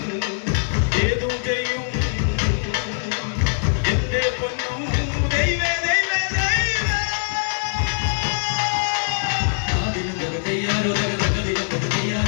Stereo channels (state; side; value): silent; right; 57 dB below the other